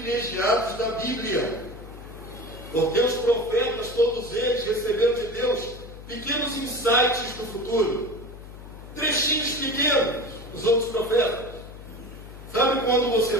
da Bíblia, porque os profetas, todos eles, receberam de Deus pequenos insights do futuro, trechinhos pequenos dos outros profetas. Sabe quando você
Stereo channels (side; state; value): left; noise; hum, 15 dB below the sound